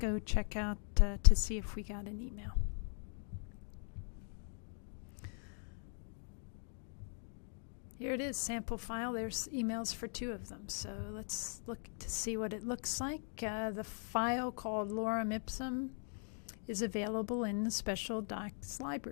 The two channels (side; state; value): right; silent; 51 dB below the other